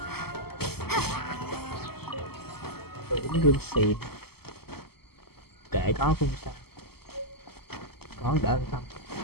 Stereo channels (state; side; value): late; right; 0.96 ms